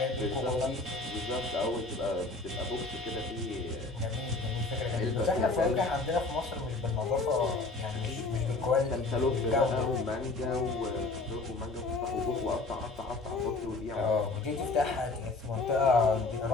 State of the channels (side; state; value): right; quieter; 3.4 dB